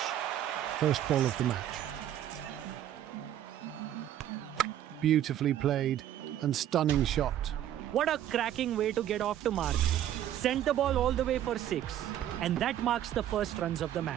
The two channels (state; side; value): quieter; left; 11.5 dB